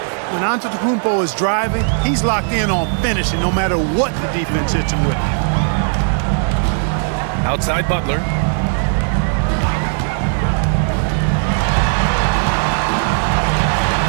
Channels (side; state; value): left; silent; 59 dB below the other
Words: When Antetokounmpo is driving, he's locked in on finishing no matter what the defense hits him with. Outside Butler.